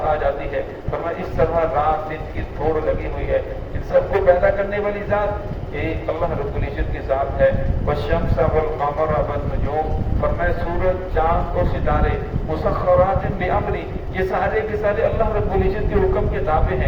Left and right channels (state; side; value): identical; both; correlation 1.00